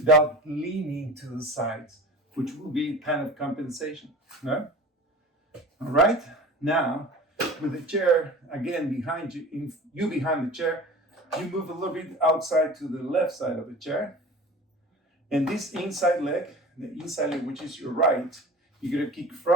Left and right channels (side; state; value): both; normal; correlation 0.38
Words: leaning to the sides, which will be kind of compensation. No? All right, now with the chair again behind you, behind the chair, you move a little bit outside to the left side of the chair. And this inside leg, which is your right, you're gonna kick